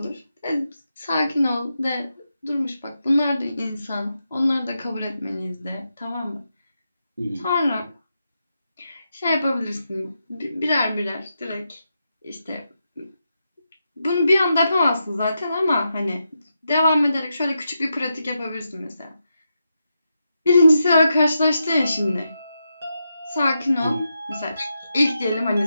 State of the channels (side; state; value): both; inverted; correlation -0.86